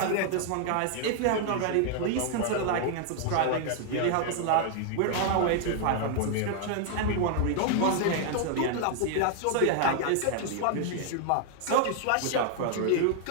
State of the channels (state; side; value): different; both; correlation 0.00